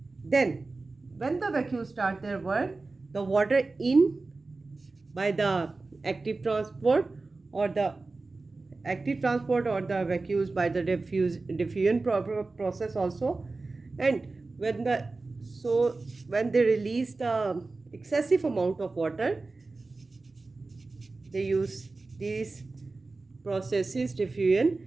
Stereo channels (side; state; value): left; quieter; 3.6 dB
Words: Then when the vacuoles start their work, the water in by the active transport or the vacuoles by the diffusion process also. And when they release the excessive amount of water, they use these processes, diffusion